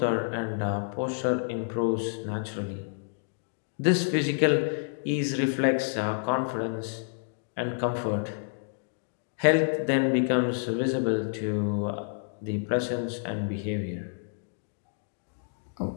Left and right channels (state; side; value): silent; right; digital silence